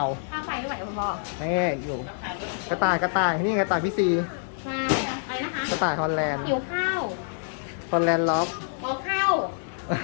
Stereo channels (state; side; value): silent; right; digital silence